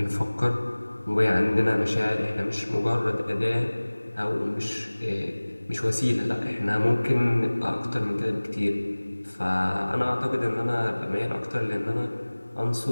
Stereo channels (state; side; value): inverted; both; correlation -1.00